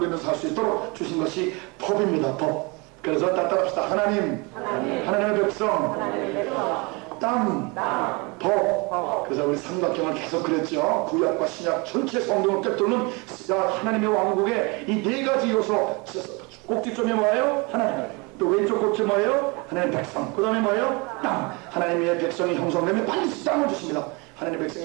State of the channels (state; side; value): quieter; left; 28.4 dB